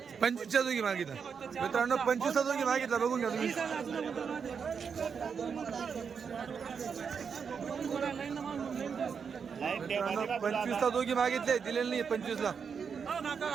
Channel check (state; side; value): quieter; left; 6.4 dB